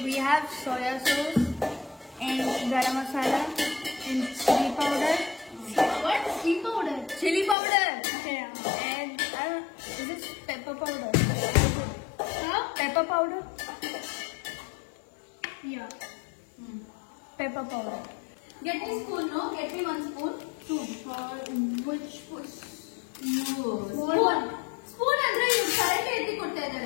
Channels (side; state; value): right; drops out; at 7.6 s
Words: we have soya sauce and garam masala and chili powder. What? Chili powder? Chili powder. Yeah. And is it pepper powder? Huh? Pepper powder? Yeah. Pepper powder. Get me spoon, no? Get me one spoon. Two. For which was? Spoon. Spoon andre you correctly etti kotta